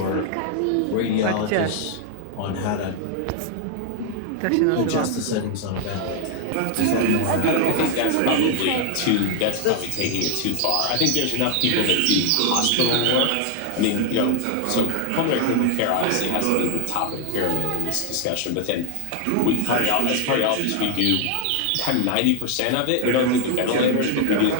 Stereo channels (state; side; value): different; both; correlation 0.00